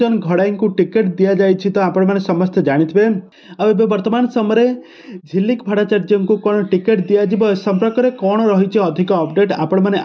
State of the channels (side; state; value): both; identical; correlation 1.00